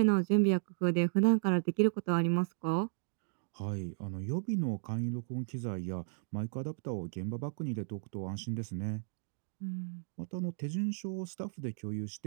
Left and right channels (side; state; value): left; silent; digital silence